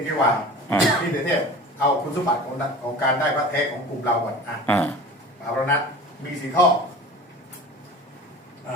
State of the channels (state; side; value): normal; both; correlation 0.38